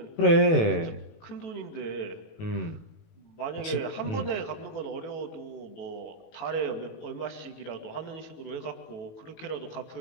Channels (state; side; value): late; right; 18 ms